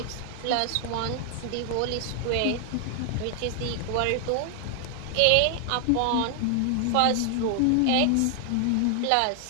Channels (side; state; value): both; different; correlation 0.00